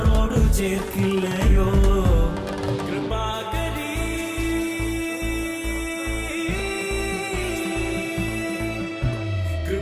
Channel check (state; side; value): identical; both; correlation 1.00